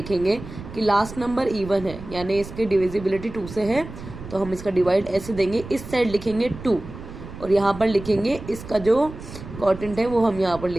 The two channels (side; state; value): right; noise; rumble, 13 dB below the sound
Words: कि लास्ट नंबर इवन है, यानी इसकी डिविजिबिलिटी 2 से है, तो हम इसका डिवाइड ऐसे देंगे, इस साइड लिखेंगे 2 और यहाँ पर लिखेंगे इसका जो क्वोटिएंट है वो हम यहाँ पर